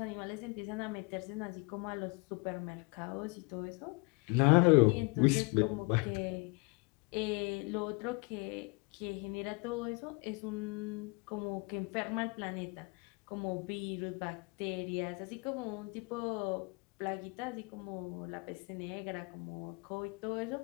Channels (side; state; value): right; quieter; 29.3 dB